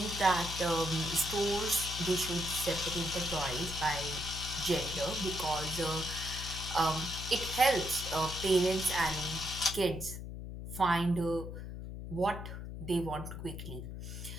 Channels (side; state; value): left; noise; hum, 8 dB below the sound